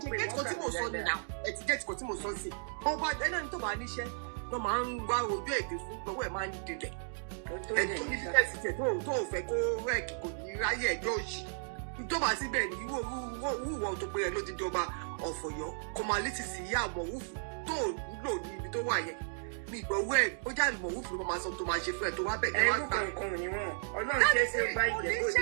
ọba ẹni tó bá níṣẹ́ ló máa ń wá ojú èdè fún lọ́wọ́ ẹ̀ máa ń dilẹ̀ ẹ̀tọ́ ní fífẹ́sì tẹ̀ tó ò fẹ́ kó rẹ́ẹ̀kì kò ní ráyè ẹjọ́ òṣì ìjọba síbẹ̀ ní wúwọ́ tó pé ẹ ló ti jọba ọ̀fọ̀yọ́ kọmalítì sí ìyá àmọ̀wúfù tó lò ní ibi tó wà yẹn mi ìgbọ̀wọ́ ẹ̀ ó jáde àmọ̀wúfù ló máa sọ tó máa ṣe fún ẹ tó wá bẹ̀ ẹ wá gbà. ẹrú kankan ni wọn Ọlọ́run ṣe é ṣe bá ìjẹ́bú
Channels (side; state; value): left; silent; digital silence